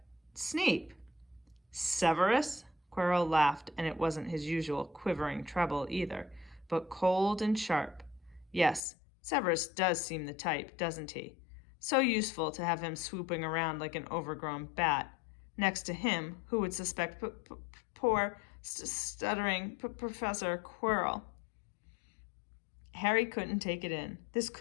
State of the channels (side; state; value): right; drops out; at 8.8 s